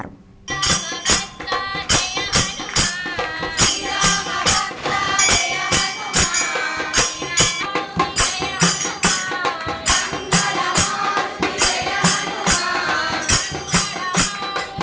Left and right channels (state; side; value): identical; both; correlation 1.00